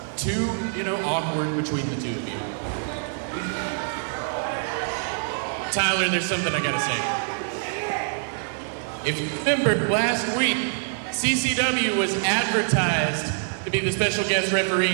too, awkward between the two of you. Tyler, there's something I gotta say. If you remember, last week, CCW was advertised to be the special guest referee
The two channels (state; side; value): silent; left; digital silence